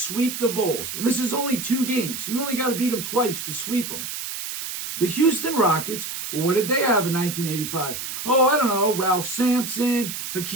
the Bulls, and this is only 2 games, so you only got to beat them twice to sweep them. The Houston Rockets, well, what did they have in 1985? Oh, I don't know, Ralph Sampson,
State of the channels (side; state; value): right; noise; hiss, 6 dB below the sound